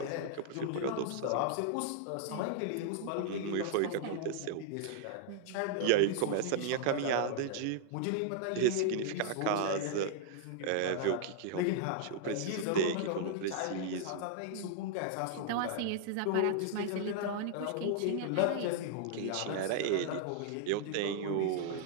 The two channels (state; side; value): different; both; correlation -0.01